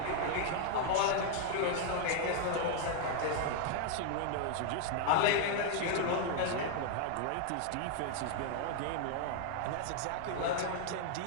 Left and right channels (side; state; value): both; different; correlation 0.00